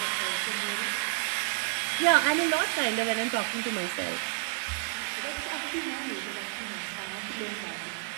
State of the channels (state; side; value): silent; left; 58 dB below the other